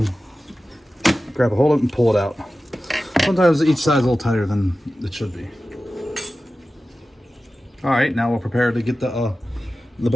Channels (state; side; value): normal; both; correlation 0.95